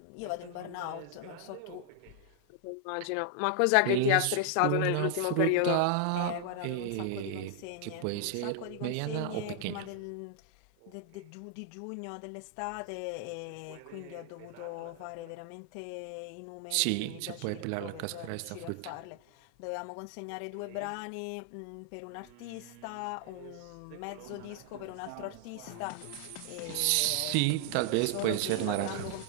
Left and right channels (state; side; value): different; both; correlation 0.00